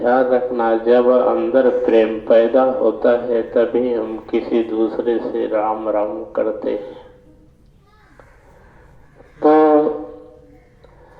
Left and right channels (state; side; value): identical; both; correlation 1.00